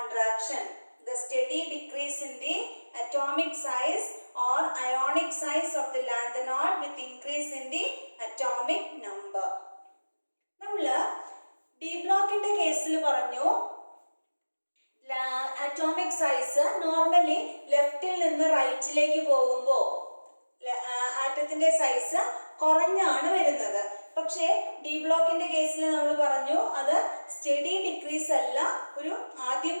The steady decrease in the atomic size or ionic size of the lanthanoid with increase in the atomic number. നമ്മൾ D ബ്ലോക്കിന്റെ കേസിൽ പറഞ്ഞു അറ്റോമിക് സൈസ് നോർമലി ലെഫ്റ്റിൽ നിന്ന് റൈറ്റിലേക്ക് പോകുമ്പോൾ ആറ്റത്തിന്റെ സൈസ് കുറഞ്ഞാണ് വരുന്നത്. പക്ഷേ ഡി ബ്ലോക്കിന്റെ കേസിൽ നമ്മൾ പറഞ്ഞു അത് സ്റ്റഡി ഡിക്രീസ് അല്ല, ഒരു ആദ്യം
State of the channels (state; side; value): inverted; both; correlation -1.00